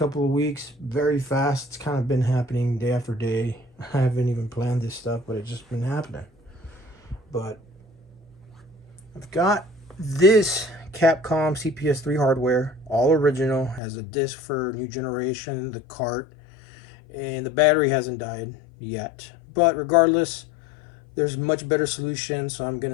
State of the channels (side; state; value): right; drops out; at 13.8 s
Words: of weeks. Very fast. It's kind of been happening day after day. I haven't even planned this stuff, but it's just been happening. But I've got this Capcom CPS3 hardware, all original, has a disc for new generation, the cart, and the battery hasn't died yet. But regardless, there's much better solutions, so I'm going